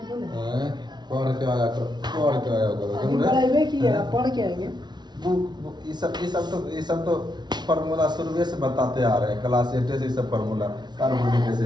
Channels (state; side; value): late; left; 0.20 ms